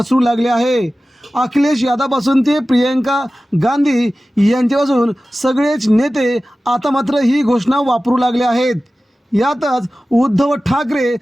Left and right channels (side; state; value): both; normal; correlation 0.96